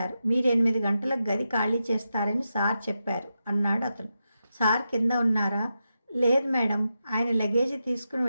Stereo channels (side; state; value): both; inverted; correlation -0.88